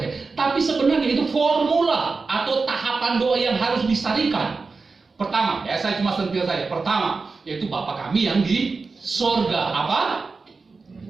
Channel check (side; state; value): left; quieter; 4.3 dB